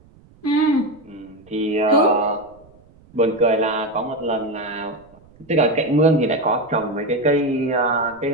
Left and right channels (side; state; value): right; noise; rumble, 27 dB below the sound